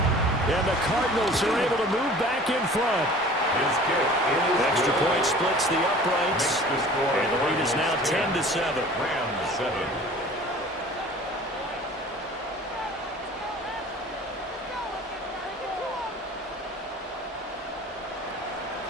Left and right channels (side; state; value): both; normal; correlation 0.45